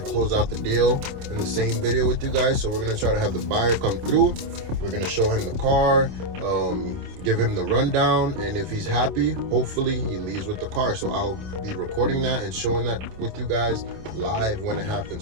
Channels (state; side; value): late; left; 27 ms